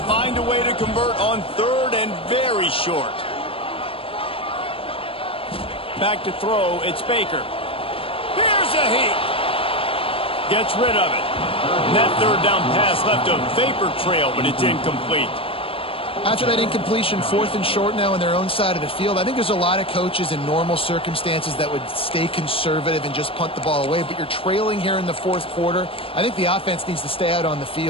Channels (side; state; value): right; late; 0.27 ms